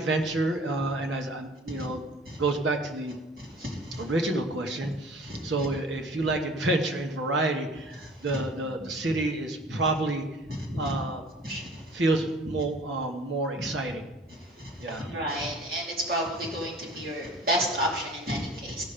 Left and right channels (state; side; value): normal; both; correlation 0.47